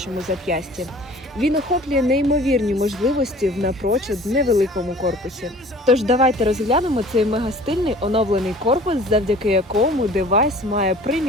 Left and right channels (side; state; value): both; normal; correlation 0.47